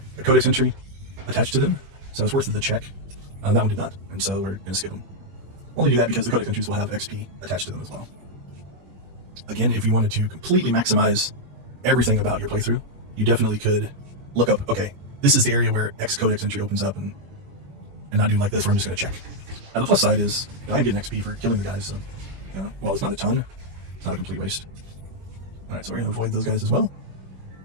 codex entry attached to them, so it's worth the check. That one did not, and so we're going to skip them. Only do that because the codex entries will have XP attached to them as well. Again, if you wanted to completely maximize everything about your playthrough, you definitely could look up, okay, this is the area where X codex entry opens up, and not do like this where I'm just going to check. Now the plus side is, I'm getting XP for killing the guys, so while it's not a ton, it's not a complete waste. Alright, so we're going to avoid those guys as well,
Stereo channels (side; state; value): left; late; 21 ms